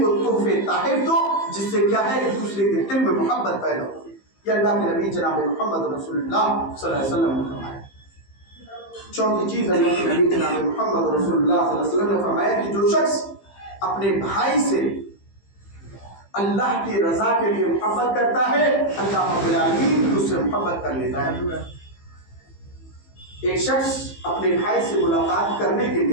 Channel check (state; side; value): late; right; 15 ms